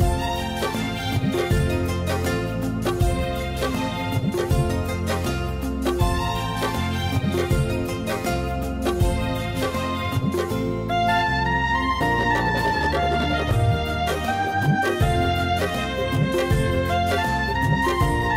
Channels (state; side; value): identical; both; correlation 1.00